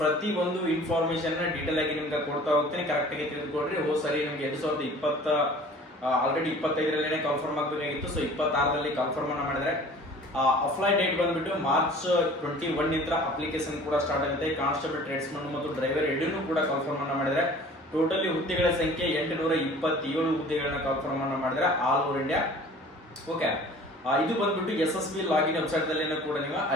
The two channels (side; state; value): both; normal; correlation 0.46